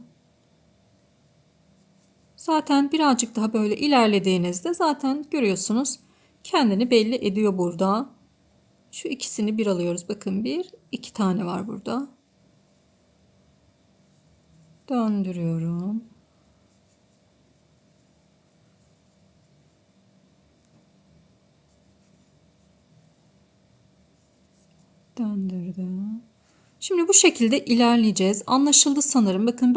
Zaten birazcık daha böyle ilerlediğinizde zaten görüyorsunuz kendini belli ediyor burada. Şu ikisini bir alıyoruz. Bakın 1 2 tane var burada. Döndürüyorum. Döndürdüm. Şimdi bu şekilde ilerleyeceğiz. Anlaşıldı sanırım. Bakın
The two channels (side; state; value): both; identical; correlation 1.00